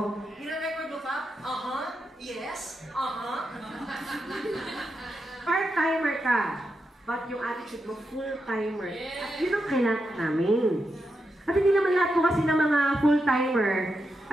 Gina-record mo pa? Yes. Part-timer ka. But yung attitude mo, full-timer. At yun ang kailangan namin. At hindi naman lahat po kasi ng mga full-timer,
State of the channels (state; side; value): normal; both; correlation 0.86